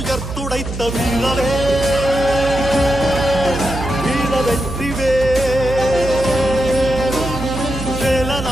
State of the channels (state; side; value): noise; right; hum, 7 dB below the sound